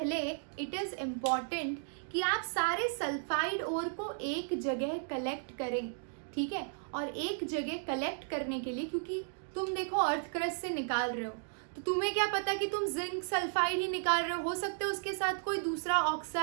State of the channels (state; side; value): silent; left; digital silence